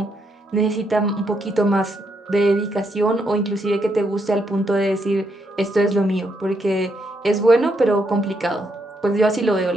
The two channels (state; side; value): normal; both; correlation 0.77